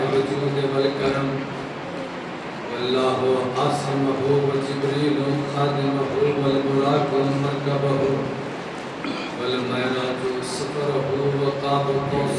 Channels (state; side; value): identical; both; correlation 1.00